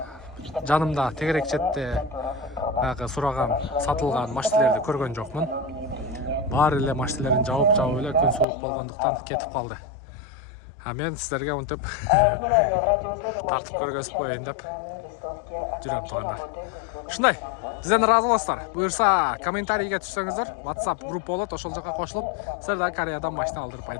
жанымда тегерек четте баягы сураган, сатылган машиналерди көргөн жокмун. Баары эле машиналерин жабып эле күн суук болгондуктан кетип калды. Мен сиздерге мынтип тартып көргөзүп коеюн деп жүрөм туугандар. Ушундай, сизден ыраазы болосуздар. Буюрса, комментарийге түшсөңүздөр, WhatsApp группа болот, ошол жака кошулуп, силер да Кореядан машина алдырып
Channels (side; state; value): right; drops out; at 8.5 s